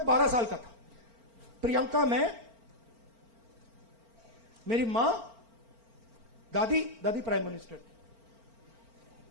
12 साल का था, प्रियंका, मैं, मेरी मां, दादी प्राइम मिनिस्टर थी।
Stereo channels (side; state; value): left; late; 4.4 ms